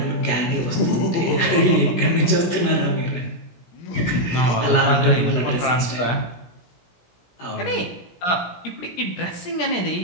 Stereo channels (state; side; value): late; right; 17 ms